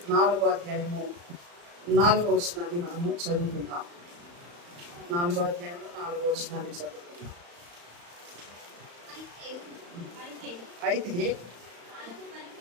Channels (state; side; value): late; left; 35 ms